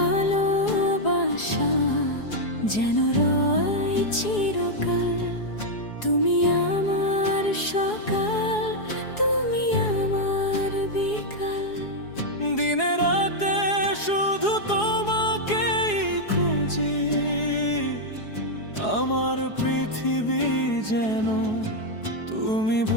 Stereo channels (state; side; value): late; right; 4.8 ms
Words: যেন রয় চিরকাল, তুমি আমার সকাল, তুমি আমার বিকাল। দিনে রাতে শুধু তোমাকেই খুঁজি, আমার পৃথিবী যেন তুমি